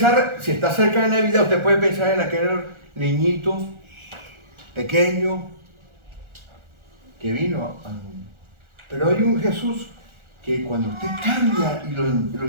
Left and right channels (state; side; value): late; left; 1.4 ms